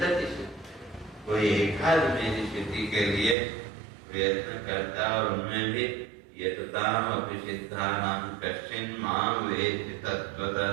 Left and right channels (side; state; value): left; drops out; at 3.4 s